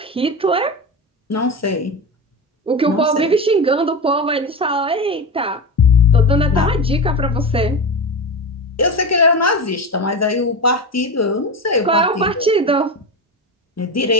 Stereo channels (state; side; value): normal; both; correlation 0.22